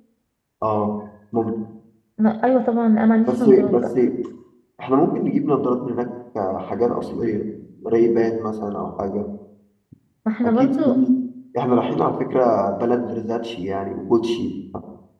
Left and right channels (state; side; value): identical; both; correlation 1.00